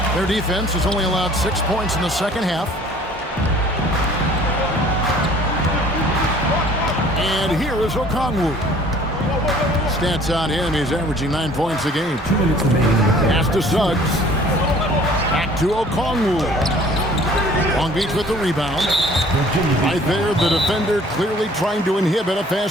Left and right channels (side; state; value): both; normal; correlation 0.53